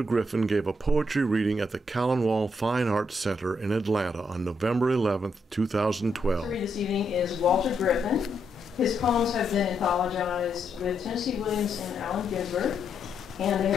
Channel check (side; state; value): both; normal; correlation 0.78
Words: Griffin gave a poetry reading at the Callanwolde Fine Arts Center in Atlanta on November 11, 2012. To read this evening is Walter Griffin. His poems have been anthologized with Tennessee Williams and Allen Ginsberg, and they